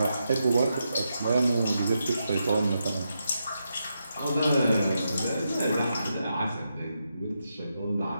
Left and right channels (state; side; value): inverted; both; correlation -0.85